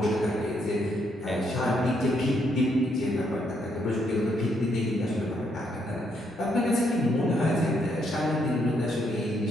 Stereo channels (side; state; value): both; normal; correlation 0.75